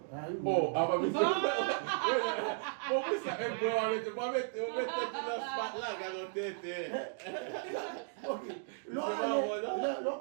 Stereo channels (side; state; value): left; silent; digital silence